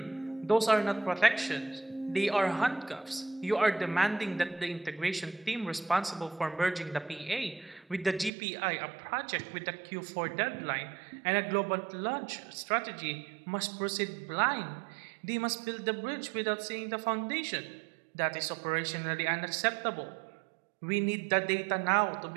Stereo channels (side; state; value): left; drops out; at 8.3 s